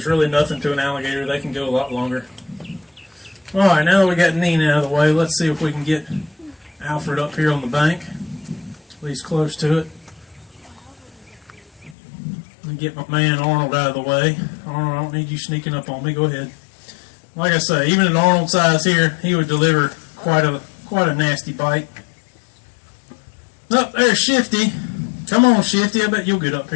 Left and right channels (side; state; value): right; drops out; at 12.0 s